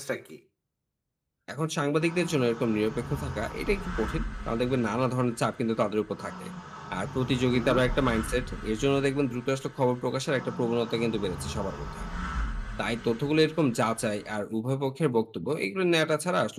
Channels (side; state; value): both; identical; correlation 1.00